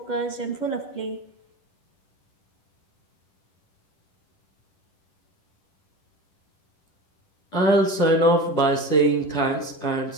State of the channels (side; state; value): right; late; 10 ms